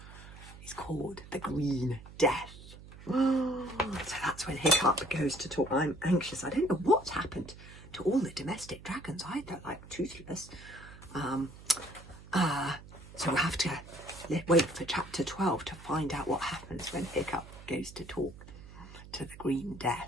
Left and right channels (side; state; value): right; noise; hum, 17 dB below the sound